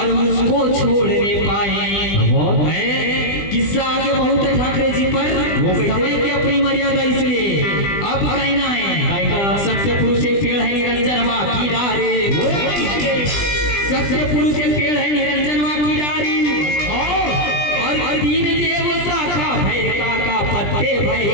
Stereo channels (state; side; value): late; right; 20 ms